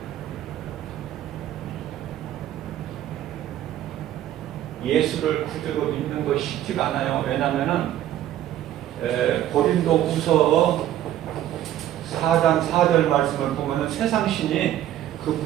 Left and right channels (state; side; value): quieter; left; 12.4 dB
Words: 예수를 구주로 믿는 것이 쉽지가 않아요. 왜냐하면 고린도후서 4장 4절 말씀을 보면 세상 신이 그